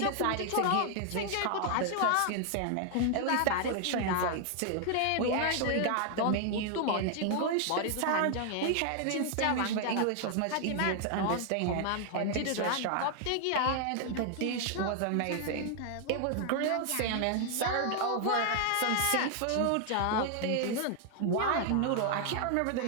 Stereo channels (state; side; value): different; both; correlation 0.00